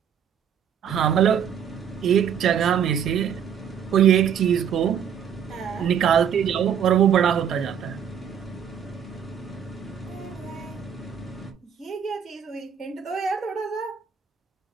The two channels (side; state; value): left; quieter; 8.4 dB